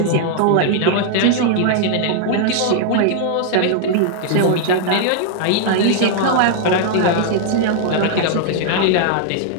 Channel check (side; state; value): both; different; correlation 0.00